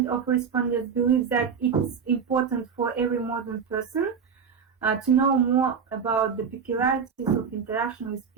of respondents believe that it's important for every modern person to know more about the peculiarities of interaction with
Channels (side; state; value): left; quieter; 6.5 dB